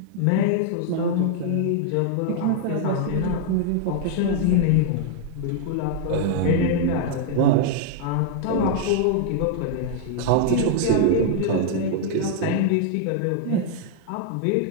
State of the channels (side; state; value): both; different; correlation -0.01